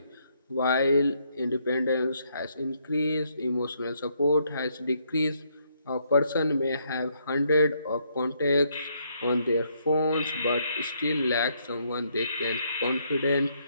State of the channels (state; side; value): inverted; both; correlation -0.73